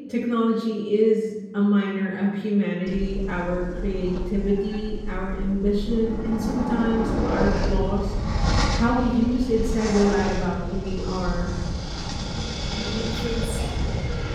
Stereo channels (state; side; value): identical; both; correlation 1.00